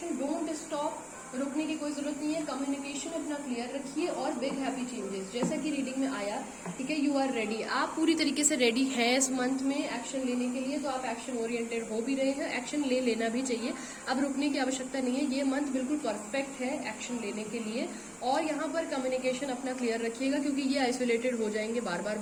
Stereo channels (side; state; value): both; identical; correlation 1.00